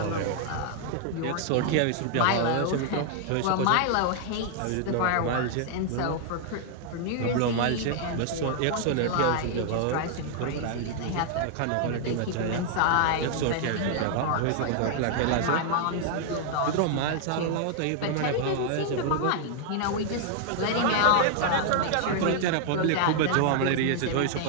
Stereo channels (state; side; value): different; both; correlation 0.00